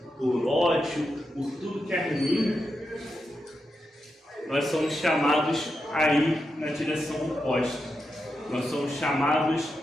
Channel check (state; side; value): normal; both; correlation 0.87